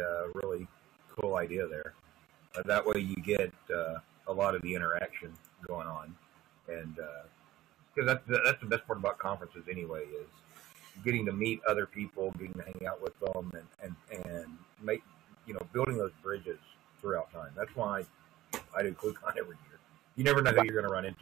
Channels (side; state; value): left; quieter; 15.5 dB